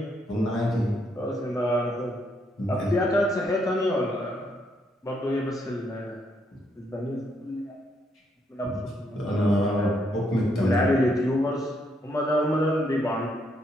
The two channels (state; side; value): normal; both; correlation 0.75